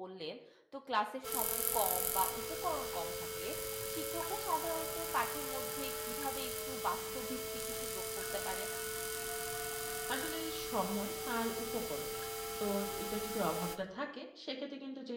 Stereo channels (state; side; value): identical; both; correlation 1.00